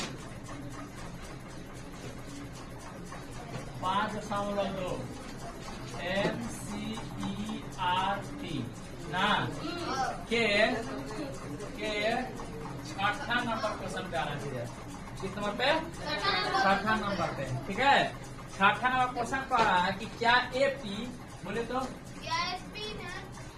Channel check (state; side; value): identical; both; correlation 1.00